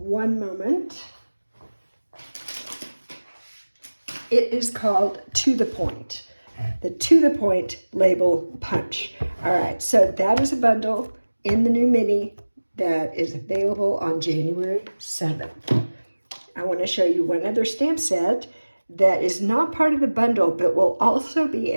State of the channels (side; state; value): both; inverted; correlation -1.00